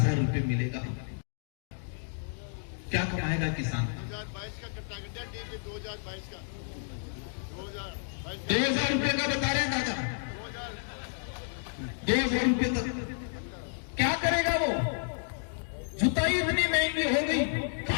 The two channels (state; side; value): silent; right; digital silence